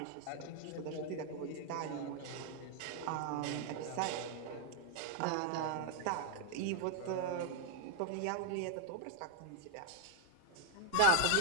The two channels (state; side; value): different; both; correlation 0.00